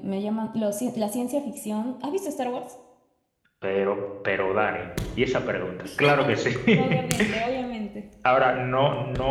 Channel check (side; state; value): both; identical; correlation 1.00